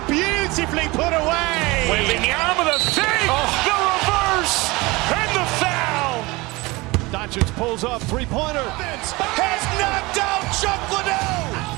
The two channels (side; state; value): left; quieter; 22.8 dB